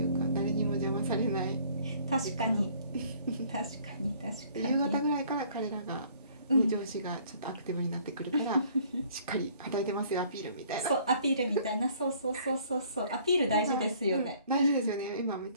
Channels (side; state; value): both; inverted; correlation -0.58